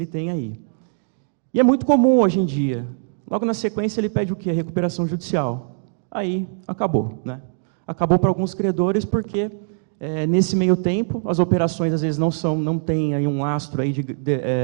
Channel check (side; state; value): left; silent; digital silence